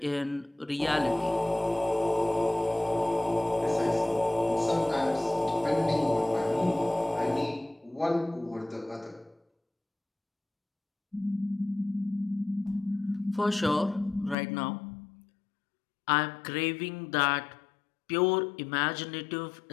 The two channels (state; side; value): drops out; right; at 14.4 s